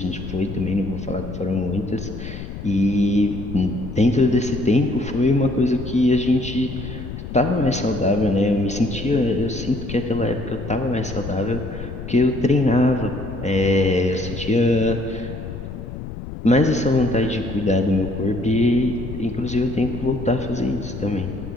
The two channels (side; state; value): left; noise; rumble, 9 dB below the sound